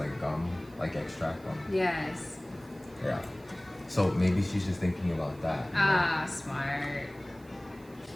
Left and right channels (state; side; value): noise; right; hiss, 27 dB below the sound